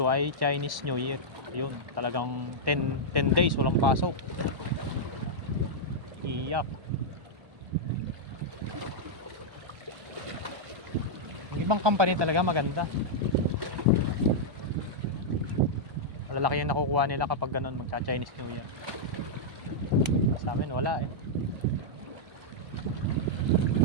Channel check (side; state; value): left; late; 1.1 ms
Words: ay Chinese New Year. Yun, talagang 10 days walang pasok. Iyak. Yung ibang company talaga maganda. Malalaki yung nakukuha nila kapag ganun magka-Chinese New Year. Sa amin wala eh.